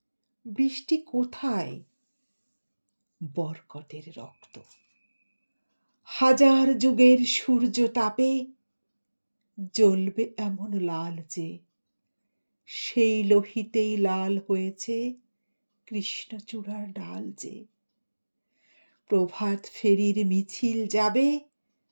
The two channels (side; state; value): both; inverted; correlation -1.00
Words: বৃষ্টি কোথায়? বরকতের রক্ত। হাজার যুগের সূর্য তাপে জ্বলবে এমন লাল যে, সেই লোহিতেই লাল হয়েছে কৃষ্ণচূড়ার ডাল যে। প্রভাত ফেরির মিছিল যাবে,